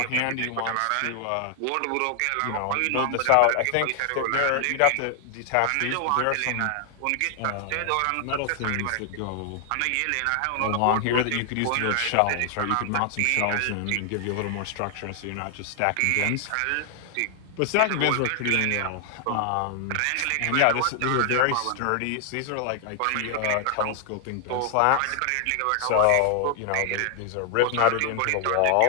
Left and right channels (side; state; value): both; different; correlation 0.00